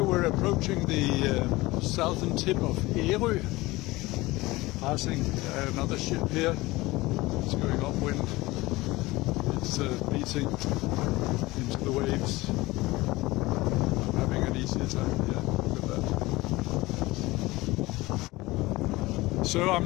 we're approaching the southern tip of Ærø, passing another ship here. It's going upwind. It's beating into the waves. I'm having an easier time here. Look at that. So I'm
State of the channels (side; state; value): right; quieter; 20.3 dB